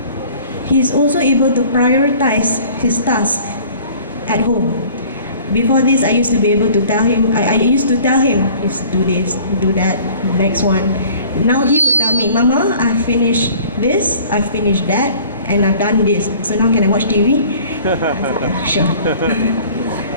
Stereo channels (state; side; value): inverted; both; correlation -0.50